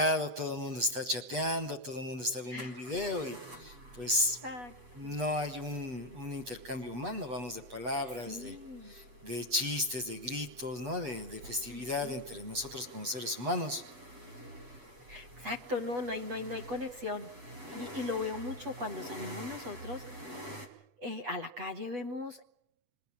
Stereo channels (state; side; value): late; left; 8.2 ms